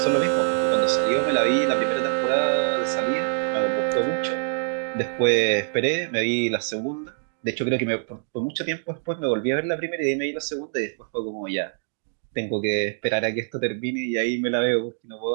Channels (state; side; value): silent; left; digital silence